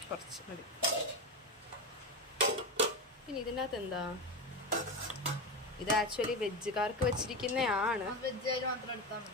കുറച്ച് മതി. പിന്നെ ഇതിനകത്ത് എന്താ, ഇത് ആക്ച്വലി വെജുകാർക്ക് വെച്ചിരിക്കുന്നതാണ്,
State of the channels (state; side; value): normal; both; correlation 0.18